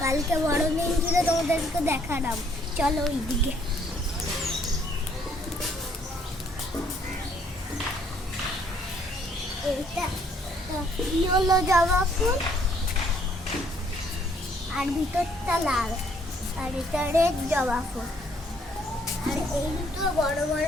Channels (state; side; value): normal; both; correlation 0.65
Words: কালকে বড়দিন ছিল, তোমাদেরকে দেখালাম। চলো ওইদিকে। এইটা হলো জবা ফুল, আর ভিতরটা লাল, আর এটা রেড জবা ফুল। আর এই দুটো বড় বড়